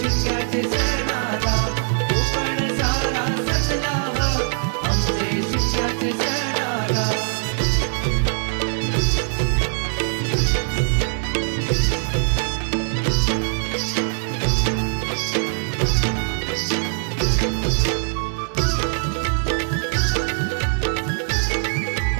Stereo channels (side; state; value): left; silent; 64 dB below the other